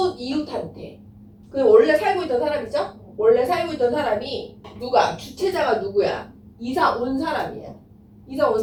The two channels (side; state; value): both; identical; correlation 1.00